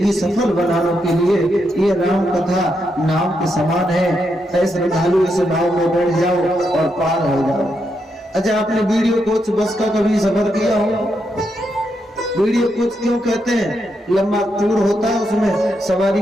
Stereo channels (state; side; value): normal; both; correlation 0.82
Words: सफल बनाने के लिए ये राम कथा नाव के समान है। ऐसे श्रद्धालु इस नाव में बैठ जाओ और पार हो जाओ। अच्छा, आपने वीडियो कोच बस का कभी सफर किया हो? वीडियो कोच क्यों कहते हैं? लंबा टूर होता है, उसमें सवारी